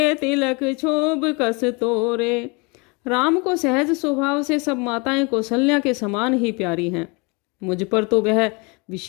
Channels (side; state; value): right; quieter; 29.6 dB